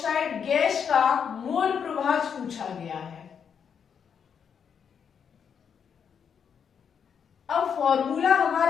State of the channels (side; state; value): right; quieter; 7.3 dB